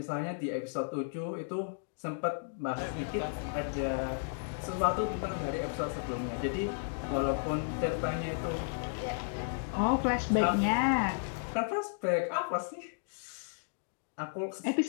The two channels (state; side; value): silent; right; digital silence